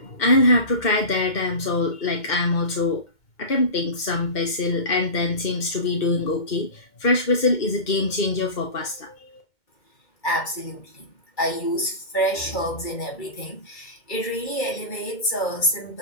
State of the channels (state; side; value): late; right; 2.1 ms